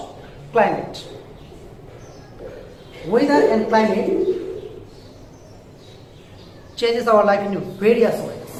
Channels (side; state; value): both; identical; correlation 1.00